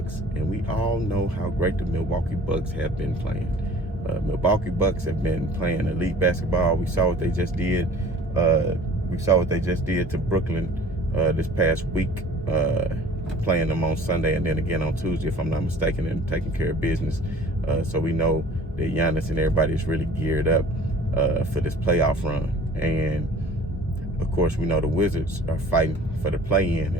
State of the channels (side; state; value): both; normal; correlation 0.48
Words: And we all know how great the Milwaukee Bucks have been playing. Milwaukee Bucks have been playing elite basketball. We saw what they just did. To Brooklyn this past week, playing them on Sunday and then again on Tuesday, if I'm not mistaken, and taking care of business. So we know that Giannis and everybody is really geared up for this playoff run. And of course, we know the Wizards are fighting for the play-in,